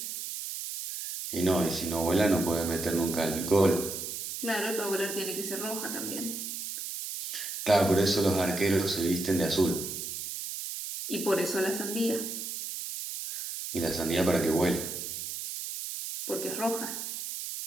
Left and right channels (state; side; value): noise; right; hiss, 6 dB below the sound